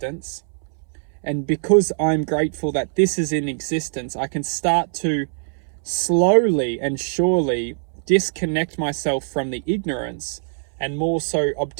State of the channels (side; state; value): left; silent; 64 dB below the other